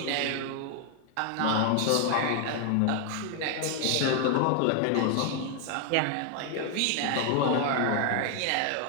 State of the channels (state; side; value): different; both; correlation 0.00